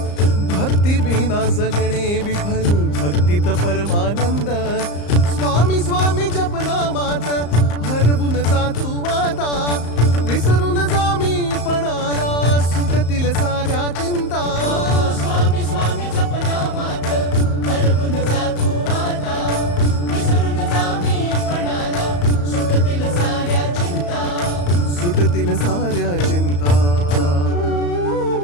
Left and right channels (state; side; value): late; right; 34 ms